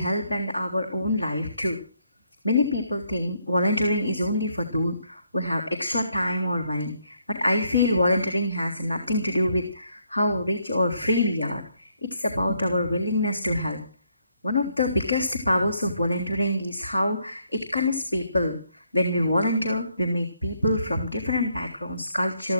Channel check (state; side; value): inverted; both; correlation -0.72